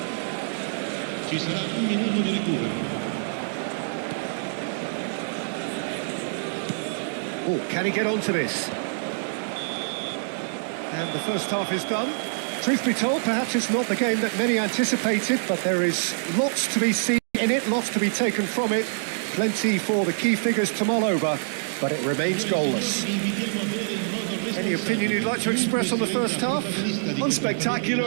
Ci sarà un minuto di recupero. Oh, can he get onto this? And the first half is done. Truth be told, perhaps it's not the game that many anticipated, but there is lots to be seen in it, lots to be taken from it. Plenty for the key figures to mull over, but it remains goalless. Any opinion you'd like to express on the first half?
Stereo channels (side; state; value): left; silent; digital silence